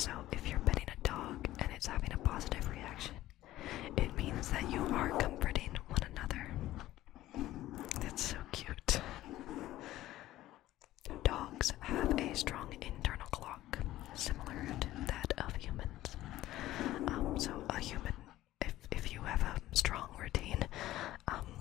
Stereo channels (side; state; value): right; quieter; 15.1 dB